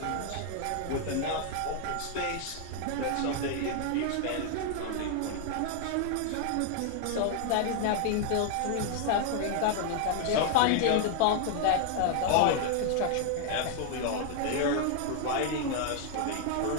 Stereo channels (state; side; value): different; both; correlation 0.00